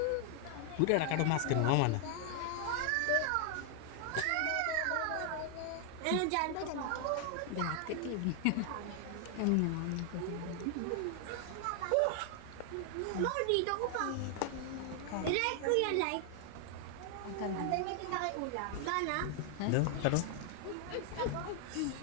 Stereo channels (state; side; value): different; both; correlation 0.00